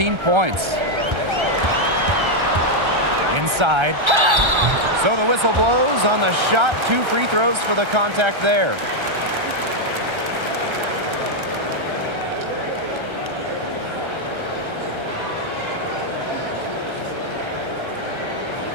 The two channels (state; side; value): late; left; 1.3 ms